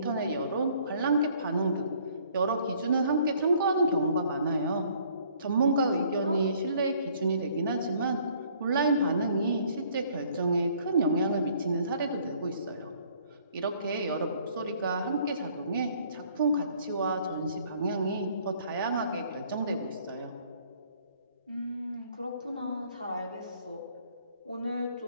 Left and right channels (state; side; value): inverted; both; correlation -0.60